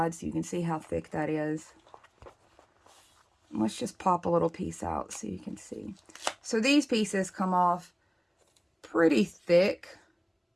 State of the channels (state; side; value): identical; both; correlation 1.00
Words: so you can see how thick that is. Let's just pop a little piece out so you can see. So these pieces come off pretty thick